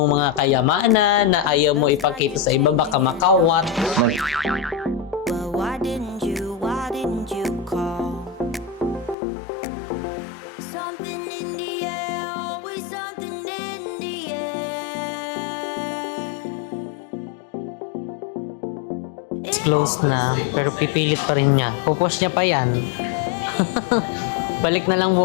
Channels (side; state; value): right; drops out; at 9.2 s